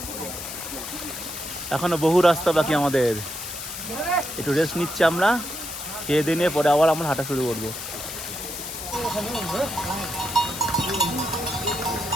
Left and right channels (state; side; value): noise; left; hiss, 8 dB below the sound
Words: এখনো বহু রাস্তা বাকি আমাদের, একটু রেস্ট নিচ্ছি আমরা। খেয়ে দিয়ে নিয়ে পরে আবার আমরা হাঁটা শুরু করবো।